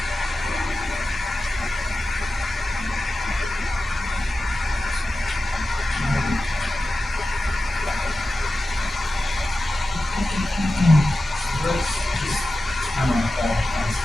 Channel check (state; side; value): normal; both; correlation 0.94